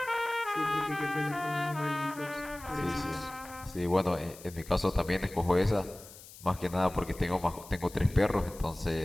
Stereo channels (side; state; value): left; noise; hiss, 18 dB below the sound